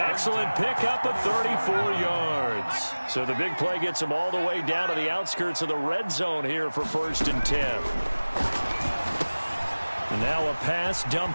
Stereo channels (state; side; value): inverted; both; correlation -1.00